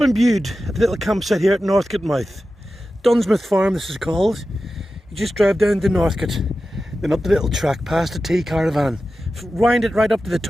Bude at the little campsite here at Northcote Mouth. Dunsmouth Farm this is called. You just drive down to Northcote, then up the little track past the tea caravan, wind it right up to the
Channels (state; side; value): normal; both; correlation 0.93